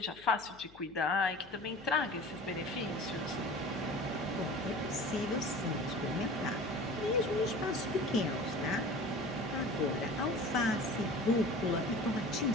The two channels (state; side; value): noise; left; hum, 24 dB below the sound